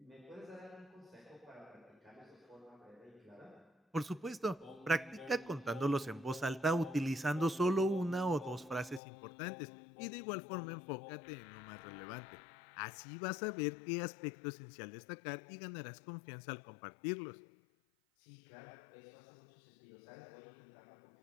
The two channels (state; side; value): drops out; right; at 9.0 s